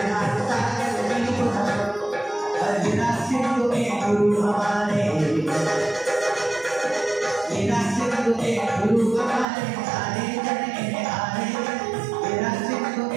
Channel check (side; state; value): left; drops out; at 9.5 s